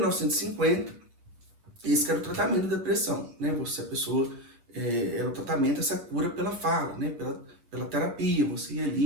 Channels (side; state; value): left; late; 8.3 ms